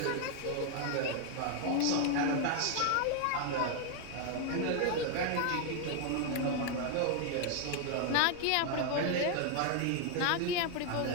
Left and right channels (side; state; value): both; different; correlation 0.00